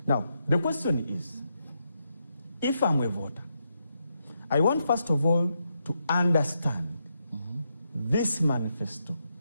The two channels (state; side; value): inverted; both; correlation -0.82